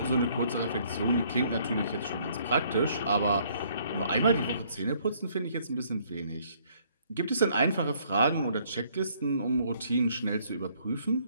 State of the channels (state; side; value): inverted; both; correlation -0.64